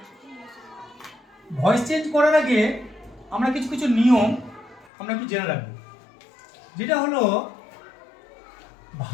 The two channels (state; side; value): drops out; right; at 4.9 s